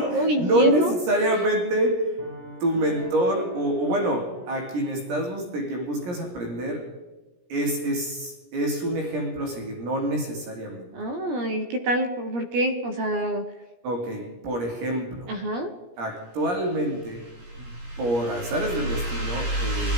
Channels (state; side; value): late; left; 17 ms